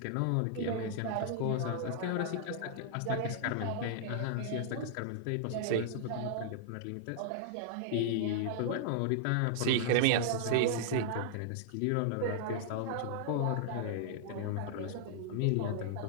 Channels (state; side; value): different; both; correlation -0.01